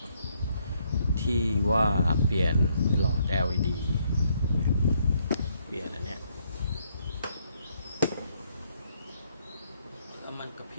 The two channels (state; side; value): inverted; both; correlation -0.71